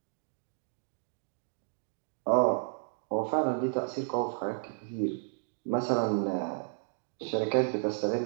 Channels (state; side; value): silent; left; digital silence